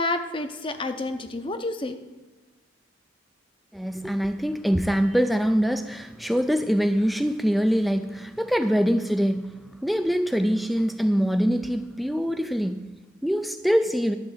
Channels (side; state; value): both; normal; correlation 0.93